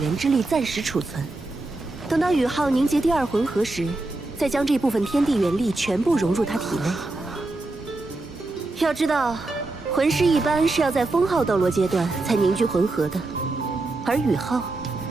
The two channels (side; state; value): left; quieter; 3.0 dB